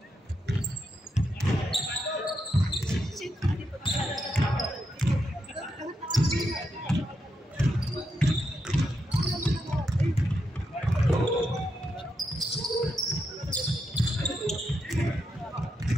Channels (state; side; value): normal; both; correlation 0.83